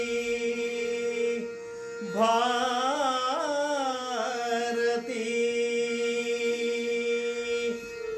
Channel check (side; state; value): both; identical; correlation 1.00